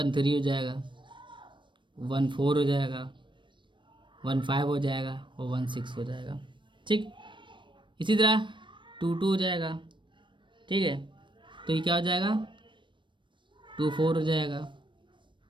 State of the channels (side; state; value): left; late; 0.23 ms